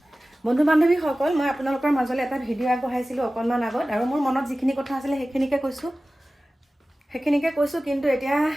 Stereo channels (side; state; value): both; normal; correlation 0.96